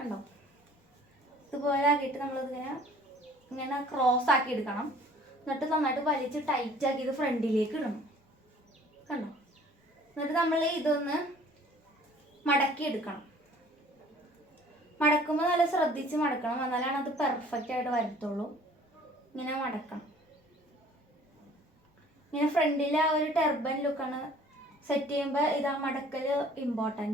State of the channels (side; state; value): both; normal; correlation 0.53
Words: ഇതുപോലെ ആക്കിയിട്ട് നമ്മളിതിങ്ങനെ ഇങ്ങനെ ക്രോസ് ആക്കി എടുക്കണം. എന്നിട്ട് നന്നായിട്ട് വലിച്ച് ടൈറ്റ് ആക്കി ഇത് ഫ്രണ്ടിലേക്ക് ഇടണം. കണ്ടോ? എന്നിട്ട് നമ്മൾ ഇതൊന്ന് മടക്കി എടുക്കണം. മടക്കുമ്പോൾ നല്ല ശ്രദ്ധിച്ച് മടക്കണം, എന്നാലാണ് അത് പെർഫെക്റ്റ് ആയിട്ട് വരത്തുള്ളൂ. ഇങ്ങനെ മടക്കണം. ഇങ്ങനെ ഫ്രണ്ടിൽ ആ ഒരു ടെർബൻ ലുക്കാണ് സെറ്റ് ചെയ്യുമ്പോൾ ഇത് ആ മടക്കൽ